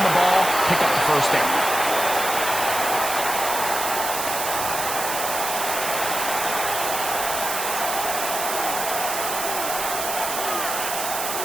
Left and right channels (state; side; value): noise; right; hiss, 3 dB below the sound